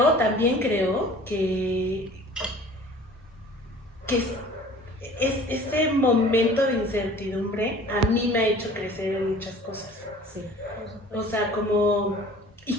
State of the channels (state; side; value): normal; both; correlation 0.47